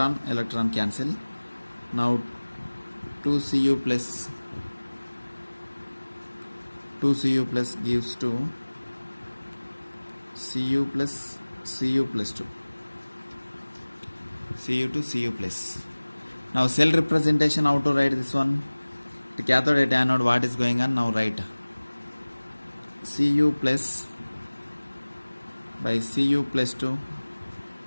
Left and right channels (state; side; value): inverted; both; correlation -1.00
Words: cancel. Now 2Cu plus gives to Cu plus 2. Cu to Cu plus. Now cell representation, how to write this one? The cathode at anode, what is going on? Now write Cu plus by Cu plus 2,